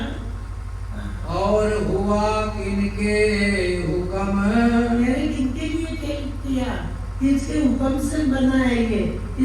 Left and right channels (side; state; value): both; identical; correlation 1.00